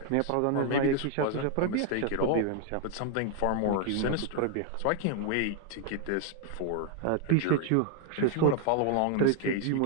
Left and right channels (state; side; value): different; both; correlation 0.00